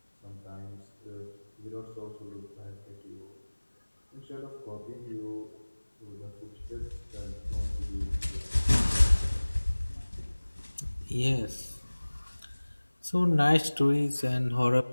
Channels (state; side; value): inverted; both; correlation -1.00